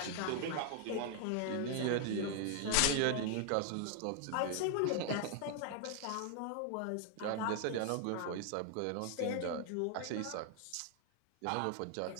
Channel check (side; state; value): both; different; correlation 0.00